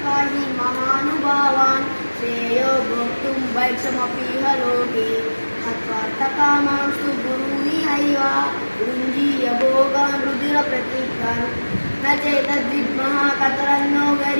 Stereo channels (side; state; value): both; inverted; correlation -1.00